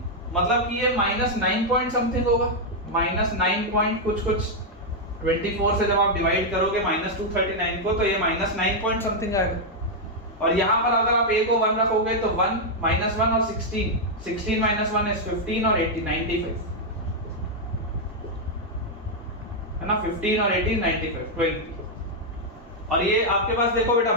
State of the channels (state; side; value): normal; both; correlation -0.02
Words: मतलब कि ये minus 9 पॉइंट समथिंग होगा, minus 9 पॉइंट कुछ 24 से जब आप डिवाइड करोगे minus 239 को तो ये minus 9 पॉइंट समथिंग आएगा। और यहाँ पर अगर आप a को 1 रखोगे तो 1 minus 1 और 16 minus 1 is 15 और 80 95 है ना, 15 और 18 95 12। और ये आपके पास देखो बेटा